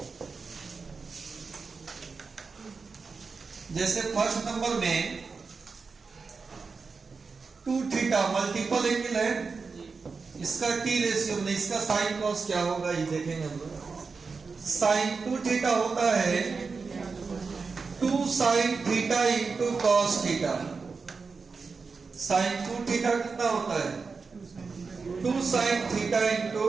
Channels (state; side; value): quieter; left; 4.7 dB